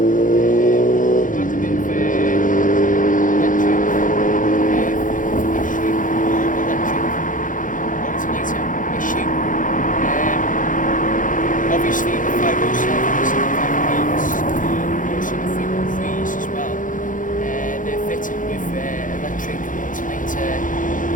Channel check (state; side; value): late; right; 0.38 ms